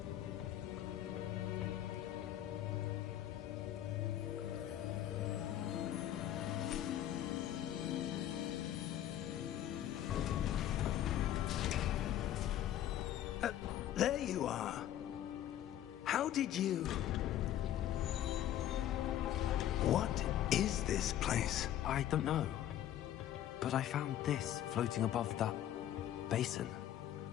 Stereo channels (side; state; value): right; quieter; 11.8 dB